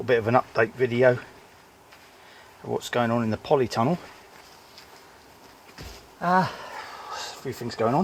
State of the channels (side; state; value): both; identical; correlation 1.00